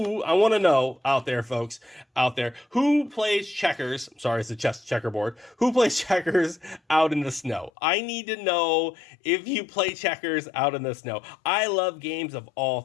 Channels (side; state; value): right; drops out; at 7.7 s